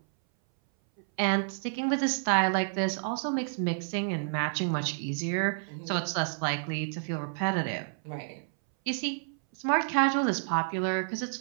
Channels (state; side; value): silent; left; 58 dB below the other